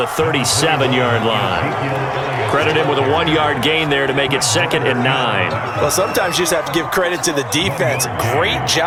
37-yard line. Credit him with a 1-yard gain there to make it 2nd and 9. Well, sometimes you just have to give credit to the defense. Great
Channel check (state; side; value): identical; both; correlation 1.00